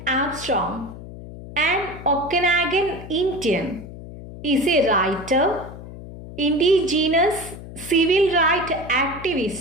Armstrong, an Okanagan Indian, is a writer, indigenous civil rights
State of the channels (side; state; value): left; noise; hum, 13 dB below the sound